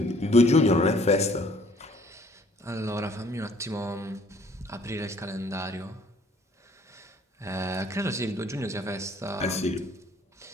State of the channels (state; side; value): normal; both; correlation 0.58